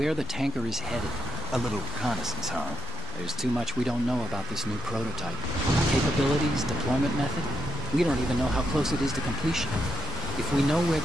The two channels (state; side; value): normal; both; correlation 0.81